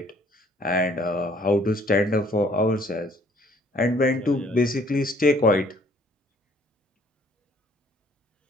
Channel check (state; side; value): normal; both; correlation 0.61